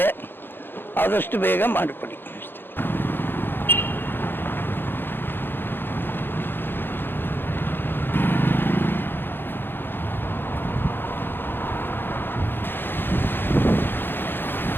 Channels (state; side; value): late; right; 0.10 ms